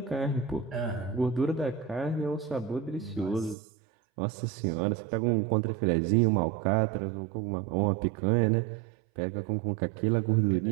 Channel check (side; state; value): left; drops out; at 3.6 s